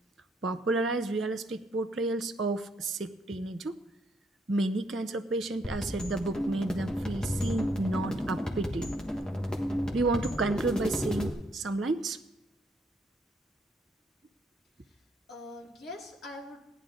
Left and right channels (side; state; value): both; normal; correlation 0.72